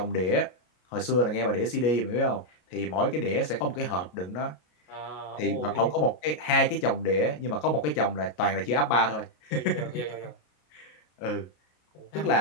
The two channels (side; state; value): right; late; 33 ms